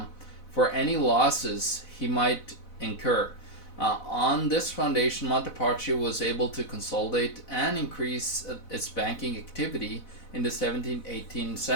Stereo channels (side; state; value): right; late; 4.0 ms